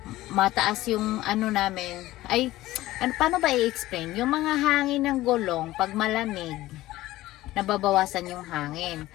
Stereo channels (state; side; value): quieter; right; 16.6 dB